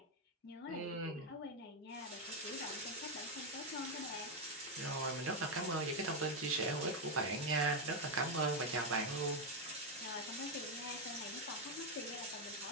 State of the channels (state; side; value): normal; both; correlation 0.04